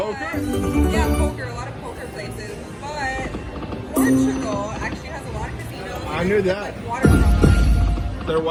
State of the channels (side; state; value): both; identical; correlation 1.00